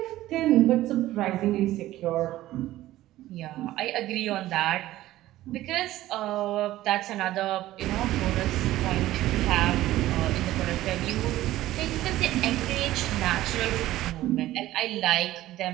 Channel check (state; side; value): quieter; left; 15.3 dB